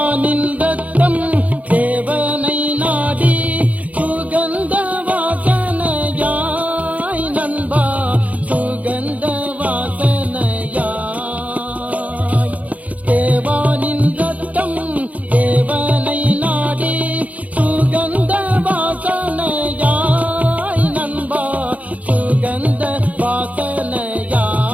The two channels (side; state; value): left; late; 0.071 ms